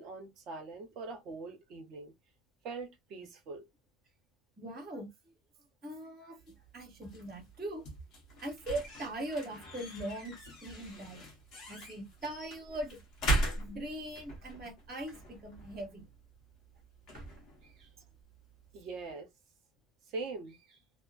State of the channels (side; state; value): both; normal; correlation 0.53